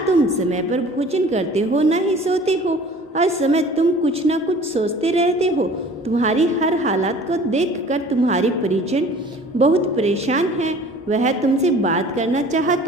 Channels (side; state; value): both; normal; correlation 0.47